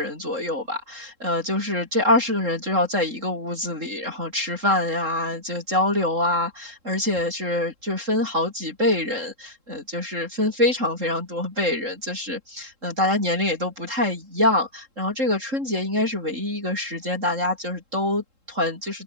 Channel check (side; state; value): left; late; 3.7 ms